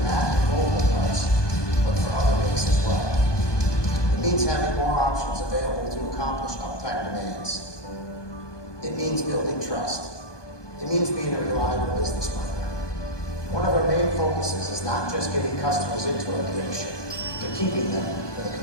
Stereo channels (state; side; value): late; right; 1.2 ms